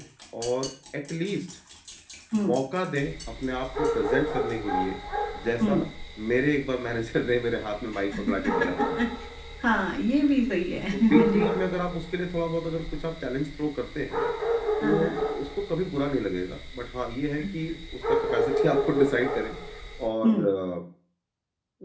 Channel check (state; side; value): identical; both; correlation 1.00